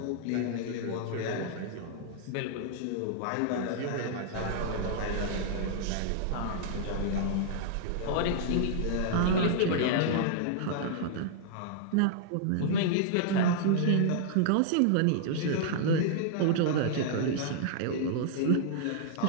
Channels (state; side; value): different; both; correlation -0.01